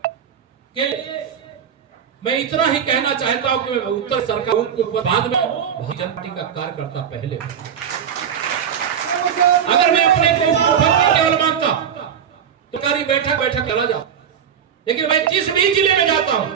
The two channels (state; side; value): quieter; left; 8.2 dB